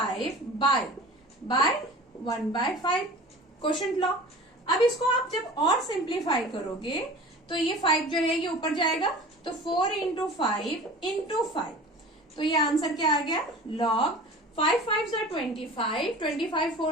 by 1/5 quotient law. अब इसको आप जब और सिंप्लीफाई करोगे तो ये 5 जो है ये ऊपर जाएगा, तो 4 इंटू 5 इंटू 5, तो ये आंसर क्या आ गया, लॉग 5 5 25, 25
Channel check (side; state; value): both; normal; correlation 0.40